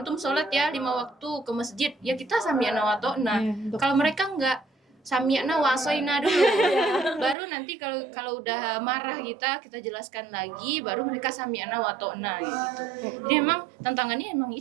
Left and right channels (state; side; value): drops out; left; at 7.4 s